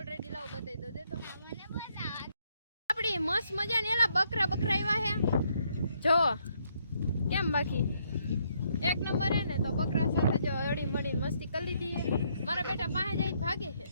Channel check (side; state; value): both; inverted; correlation -0.72